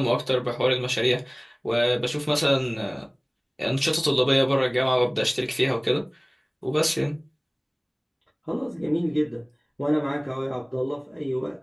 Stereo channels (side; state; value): both; identical; correlation 1.00